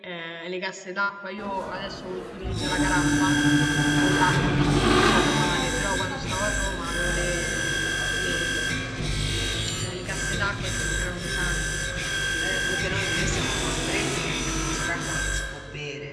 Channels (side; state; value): both; identical; correlation 1.00